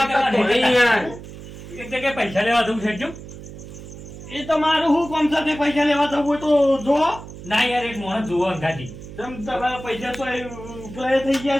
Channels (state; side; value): noise; right; hum, 14 dB below the sound